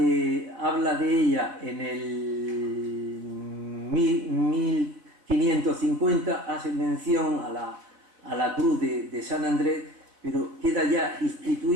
ella en el 1550, hace mención a la cruz de San Andrés, pero queda ya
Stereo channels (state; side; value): late; left; 4.2 ms